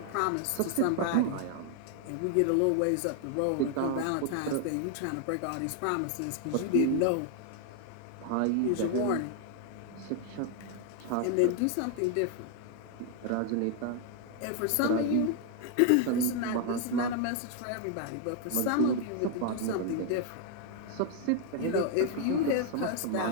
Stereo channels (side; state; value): both; different; correlation 0.00